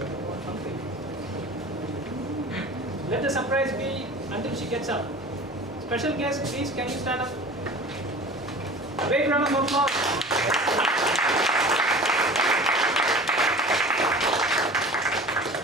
Let the surprise be until she gets up. Special guest, please, can you stand up? A big round of applause.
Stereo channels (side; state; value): both; normal; correlation 0.39